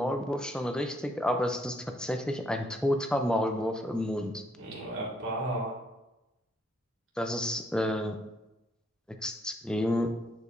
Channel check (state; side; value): normal; both; correlation 0.71